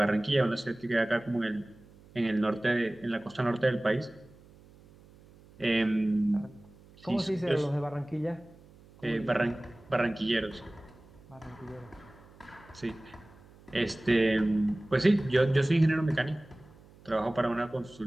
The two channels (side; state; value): right; noise; hum, 25 dB below the sound